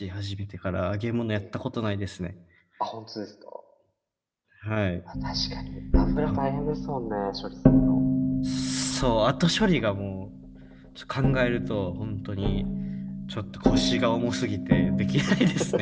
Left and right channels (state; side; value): identical; both; correlation 1.00